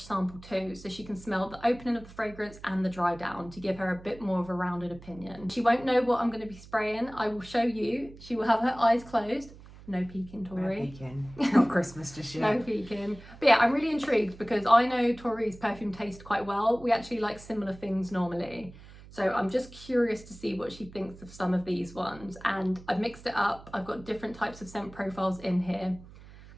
sample too, so she can smell the opening of the fragrance and the dry down to give her a bit more of a rounded opinion. She won't know what I'm going to be spraying. I will show you. She will have her eyes closed. No peeking, Tori. No peeking. Not Christmas just yet. No peeking. But yeah, I'm really intrigued because I know Tori's perfume taste quite well. We actually like similar things normally. So I'm just curious to see what she thinks of some of these ones. And I've mixed it up. I've got different types of scent profiles in here.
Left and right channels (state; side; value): noise; right; hum, 19 dB below the sound